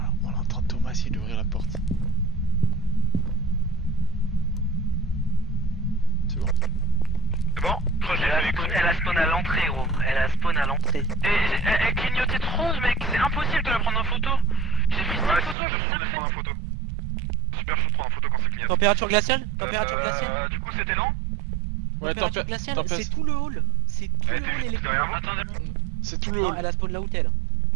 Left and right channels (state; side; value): drops out; left; at 15.6 s